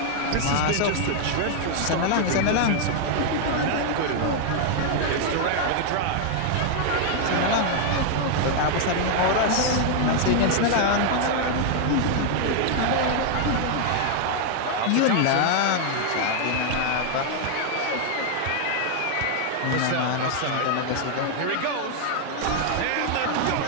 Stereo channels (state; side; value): different; both; correlation 0.00